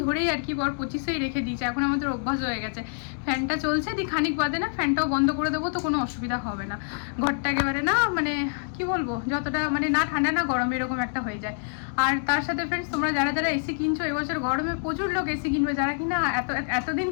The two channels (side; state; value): right; silent; digital silence